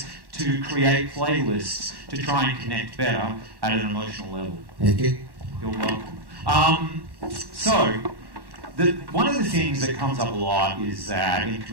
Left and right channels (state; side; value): late; left; 1.1 ms